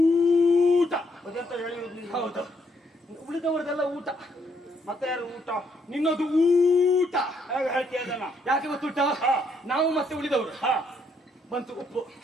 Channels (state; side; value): normal; both; correlation 0.73